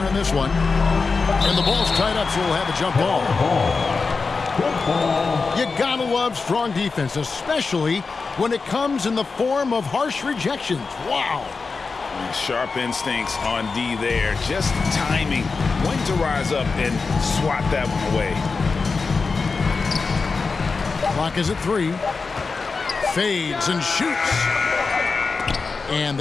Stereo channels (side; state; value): right; quieter; 4.4 dB